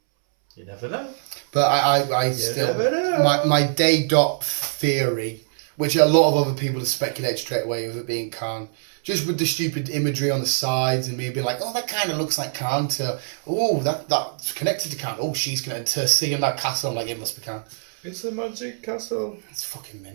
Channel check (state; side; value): silent; left; 63 dB below the other